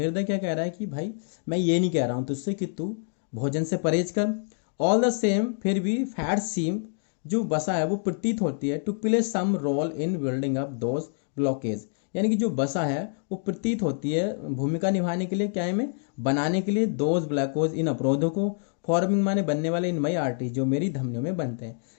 क्या कह रहा है कि भाई मैं ये नहीं कह रहा हूँ तुझसे कि तू भोजन से परहेज कर, ऑल द सेम फिर भी फैट सीम, जो वसा है वो प्रतीत होती है, to play some role in building up those blockage, यानी कि जो वसा है वो प्रतीत होती है भूमिका निभाने के लिए, क्या है, में बनाने के लिए, दोज ब्लैकोज, इन अवरोधों को, फॉर्मिंग माने बनने वाले, इन मई आर्टरी, जो मेरी धमनियों में बनते हैं।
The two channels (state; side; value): silent; right; 60 dB below the other